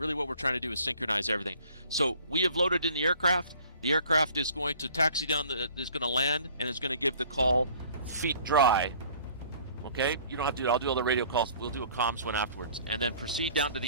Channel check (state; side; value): inverted; both; correlation -0.53